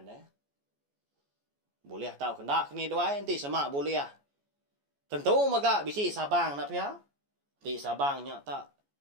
Boleh tahu kendak ni doai. Nanti semak boleh. Tentu maga bisi sabang nak pihak. Di sabangnya tak.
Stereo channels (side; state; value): left; late; 14 ms